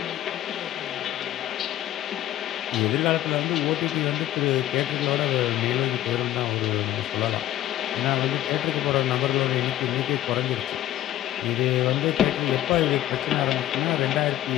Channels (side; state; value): right; quieter; 13.5 dB